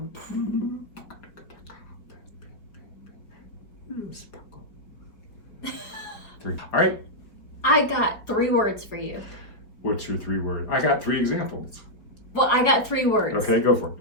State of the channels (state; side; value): late; right; 4.8 ms